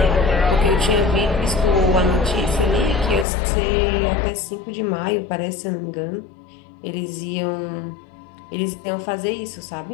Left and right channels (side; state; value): right; drops out; at 3.2 s